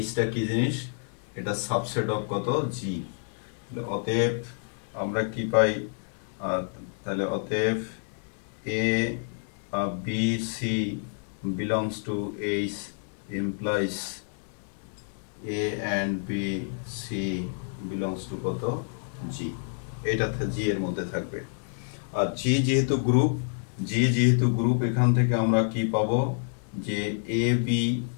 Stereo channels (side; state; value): right; silent; digital silence